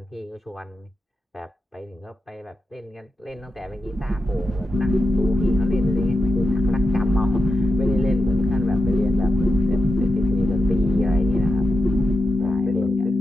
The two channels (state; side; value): normal; both; correlation 0.89